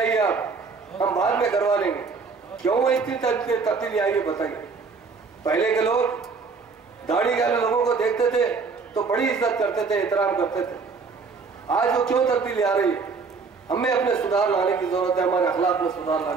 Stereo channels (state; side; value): quieter; left; 4.8 dB